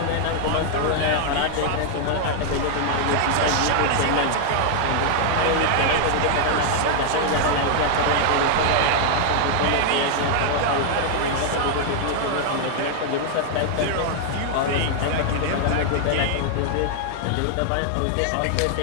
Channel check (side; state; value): both; different; correlation 0.00